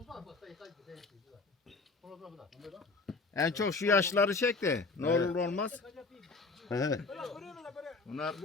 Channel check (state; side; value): quieter; right; 3.9 dB